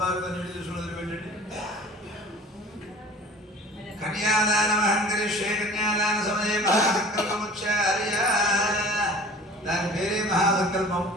కన్యాదానమహం కరిష్యే. కన్యాదాన సమయే మహాసంకల్పముచ్చార్య. దాని పేరే మహాసంకల్పం.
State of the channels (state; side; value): normal; both; correlation 0.44